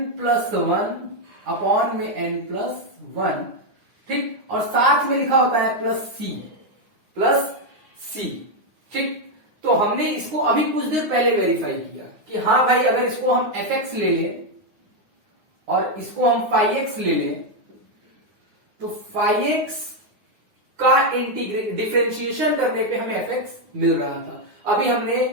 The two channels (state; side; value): late; left; 9.6 ms